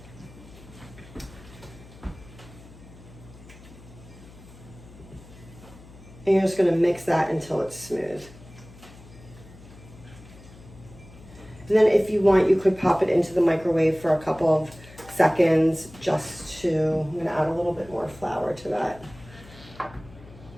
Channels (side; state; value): left; noise; hum, 20 dB below the sound